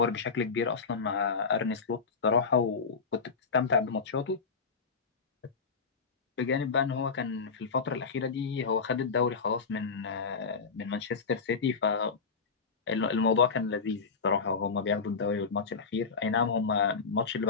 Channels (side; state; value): right; quieter; 5.2 dB